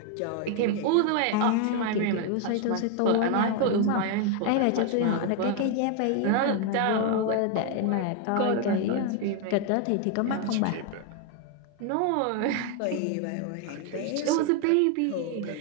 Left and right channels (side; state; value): both; different; correlation 0.01